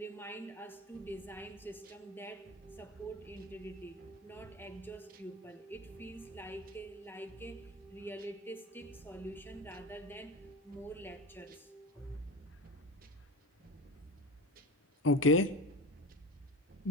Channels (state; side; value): normal; both; correlation 0.25